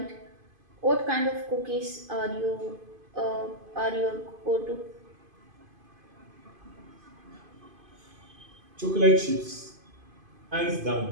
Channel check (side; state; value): left; late; 2.5 ms